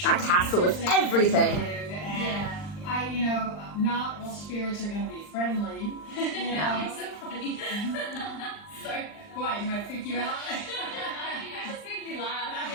that castle is everything. Yeah. You know, not all spirits are going to be friendly. You know. It's so funny. Sorry. Why, do I freak you out? You just make me laugh.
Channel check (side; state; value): right; late; 39 ms